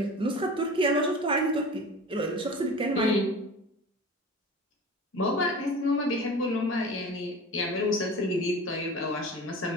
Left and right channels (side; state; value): both; normal; correlation 0.35